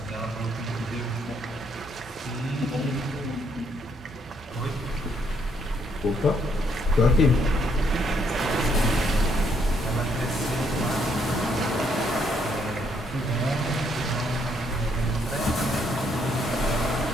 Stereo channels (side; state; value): both; normal; correlation 0.71